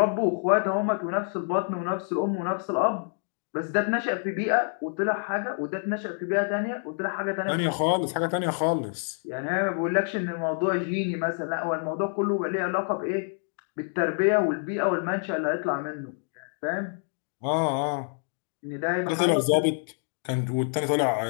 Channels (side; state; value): right; silent; 60 dB below the other